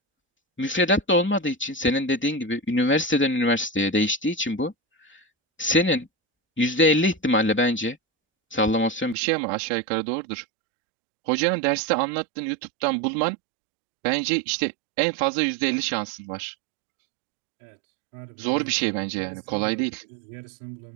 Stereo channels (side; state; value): left; drops out; at 9.2 s